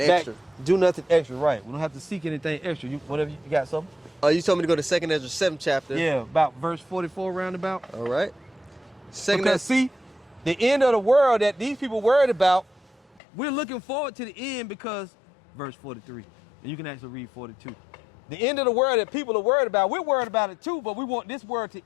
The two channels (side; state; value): right; drops out; at 13.2 s